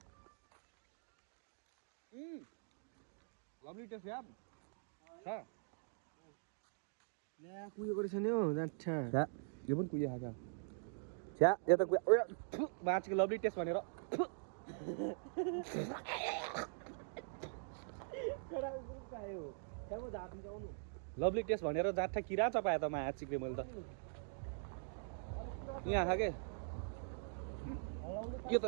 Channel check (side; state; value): left; silent; digital silence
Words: लभली टेस्ट यार छ ल्या कुयो गरेछ नि हौ जान्छा छ्या यो पनि कुयो खाएको छ्या यो त कुयो बाँचेको लभली टेस्ट भनेर लभली टेस्ट भनेर जाँठा किरा चपायो त माया चिक्रे मैले त यहाँ खाएँ